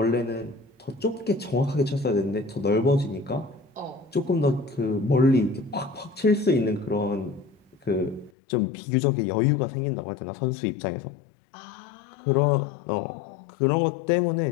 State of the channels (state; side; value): drops out; right; at 8.3 s